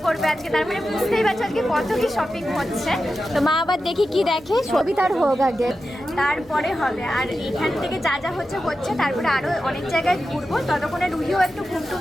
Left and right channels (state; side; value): noise; right; hum, 27 dB below the sound